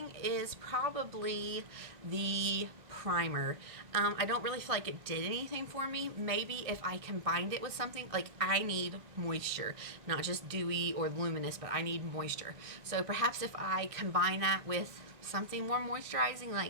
is probably the primer. I don't really feel like it did anything for me. Maybe if I combined it with something, like I need moisture, not just dewy or luminous, but I need moisture. So perhaps if I combine that with something more moisturizing,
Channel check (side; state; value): left; late; 1.5 ms